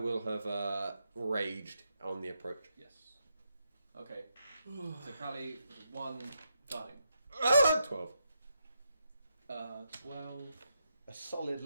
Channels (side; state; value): both; inverted; correlation -0.82